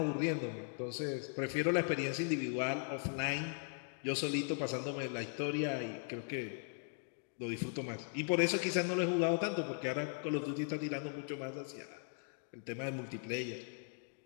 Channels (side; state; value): right; silent; 52 dB below the other